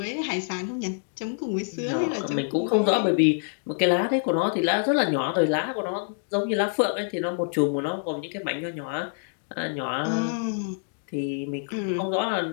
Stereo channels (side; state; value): right; silent; digital silence